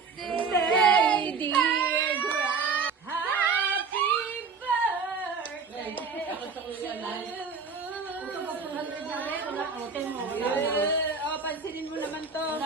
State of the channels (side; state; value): left; quieter; 5.1 dB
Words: dear Gra. Happy birthday to you. Oh, pansinin mo naman to.